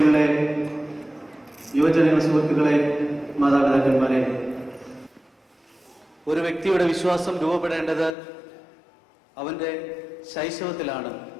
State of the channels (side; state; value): right; drops out; at 8.2 s